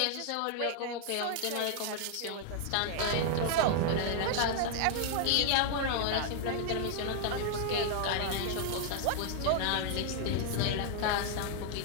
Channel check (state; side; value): different; both; correlation -0.01